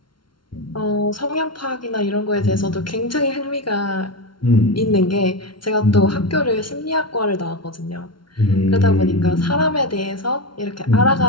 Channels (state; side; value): late; right; 0.73 ms